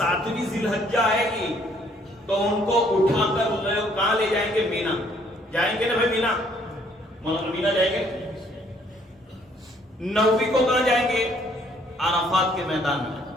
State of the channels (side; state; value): both; normal; correlation 0.64